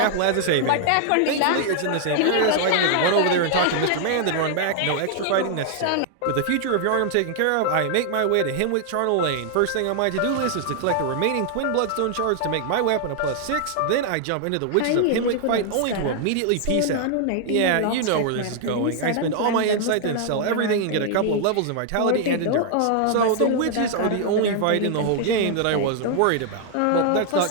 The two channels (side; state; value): both; different; correlation 0.00